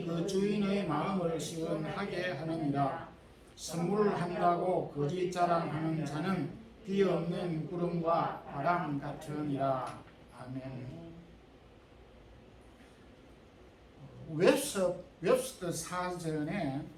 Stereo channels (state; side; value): identical; both; correlation 1.00